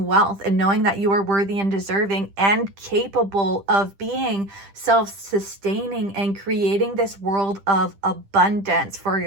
wealth and knowing that you are worthy and deserving and capable of being self-sustaining and creating this world of abundance for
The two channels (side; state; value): left; late; 10 ms